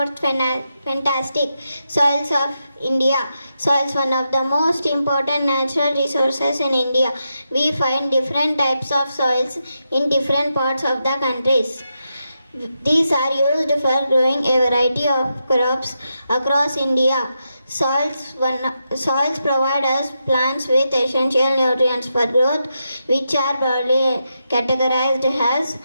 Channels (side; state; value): both; inverted; correlation -0.85